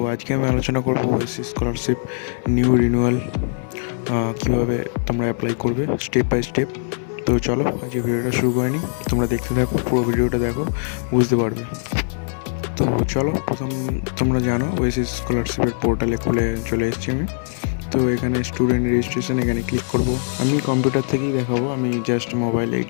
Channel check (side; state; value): right; silent; digital silence